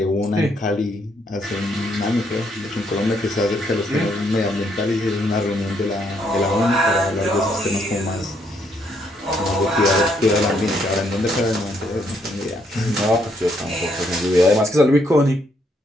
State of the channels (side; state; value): both; normal; correlation 0.72